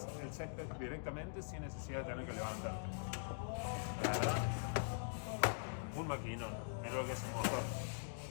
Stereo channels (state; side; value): silent; right; digital silence